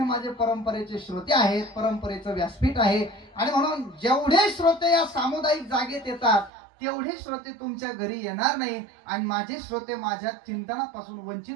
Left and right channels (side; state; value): left; drops out; at 6.5 s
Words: माझे परंपरेचे श्रोते आहेत, परंपरेचं व्यासपीठ आहे, आणि म्हणून जेवढे श्रोते या सामुदायिक जागेत येतात तेवढे श्रोते तुमच्या घरी येणार नाही, आणि माझे श्रोते माझ्या चिंतनापासून